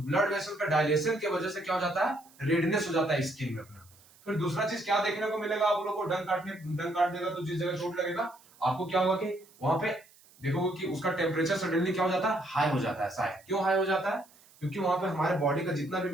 वेसल का डायलेशन की वजह से क्या हो जाता है, रेडनेस हो जाता है स्किन में अपना। फिर दूसरा चीज क्या देखने को मिलेगा आप लोगों को, डंक काट देगा तो जिस जगह चोट लगेगा आपको क्या होगा कि वहां पे देखोगे कि उसका टेम्परेचर सडनली क्या हो जाता है, हाई हो जाता है। शायद क्यों हाई हो जाता है, क्योंकि वहां पे हमारे बॉडी का जितना भी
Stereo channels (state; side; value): noise; right; hiss, 27 dB below the sound